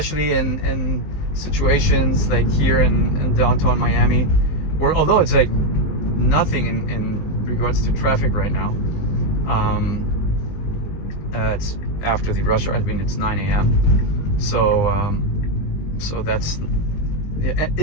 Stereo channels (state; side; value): late; right; 20 ms